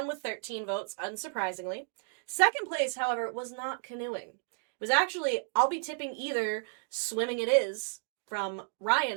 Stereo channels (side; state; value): left; silent; digital silence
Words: with 13 votes, unsurprisingly. Second place, however, was not canoeing. It was actually, I'll be tipping either swimming it is from Ryan